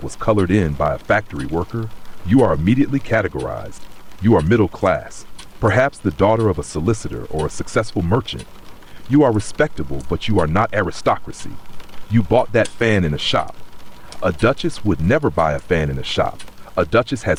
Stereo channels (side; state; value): both; identical; correlation 1.00